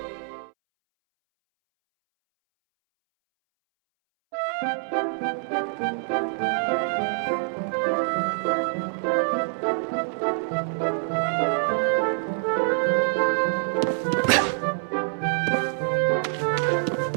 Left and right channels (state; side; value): silent; left; 61 dB below the other